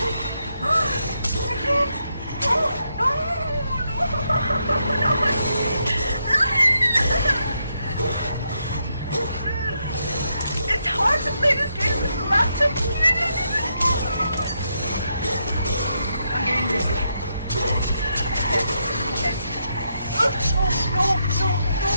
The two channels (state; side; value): inverted; both; correlation -0.80